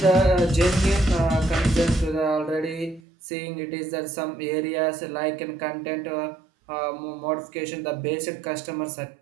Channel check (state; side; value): drops out; left; at 3.0 s